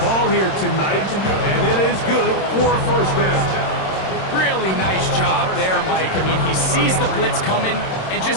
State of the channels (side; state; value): right; late; 26 ms